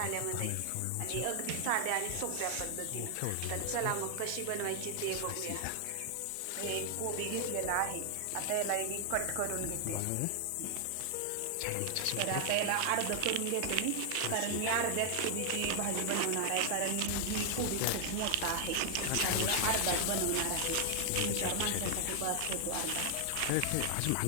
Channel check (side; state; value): both; different; correlation 0.00